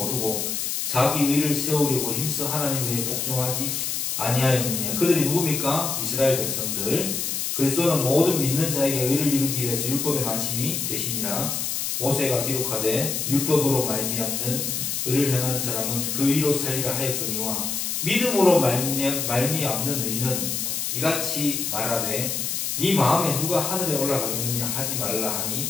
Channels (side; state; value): left; noise; hiss, 1 dB below the sound